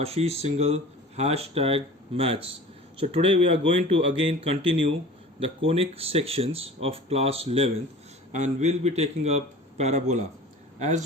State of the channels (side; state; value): both; normal; correlation 0.41